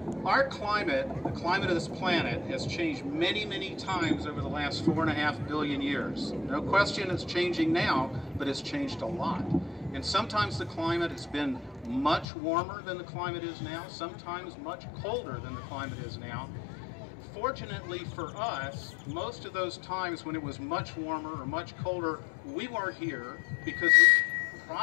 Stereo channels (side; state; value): right; drops out; at 12.2 s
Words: our climate, the climate of this planet, has changed many, many times over the last 4.5 billion years. No question it's changing now, but it's changed a lot. And sometimes the climate has been much warmer than the climate is now, sometimes much colder than the climate is now. Fortunately for us, most of those times when it was much warmer or much colder, we weren't here because we